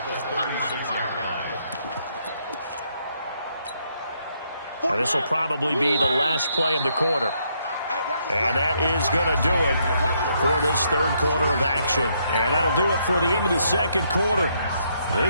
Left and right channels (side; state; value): both; inverted; correlation -0.73